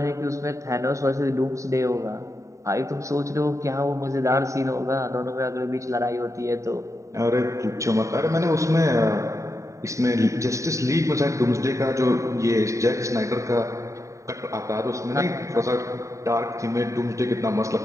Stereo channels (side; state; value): left; late; 0.15 ms